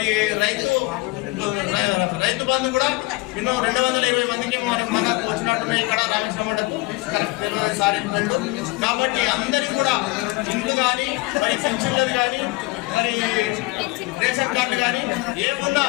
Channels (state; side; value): quieter; right; 23.2 dB